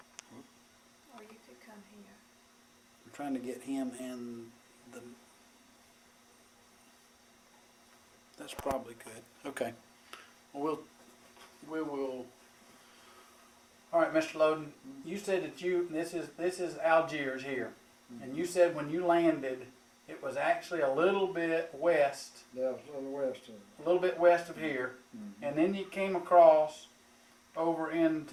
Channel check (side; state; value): both; identical; correlation 1.00